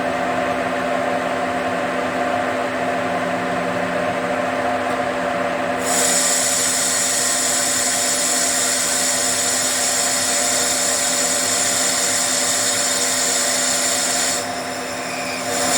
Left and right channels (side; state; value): both; identical; correlation 1.00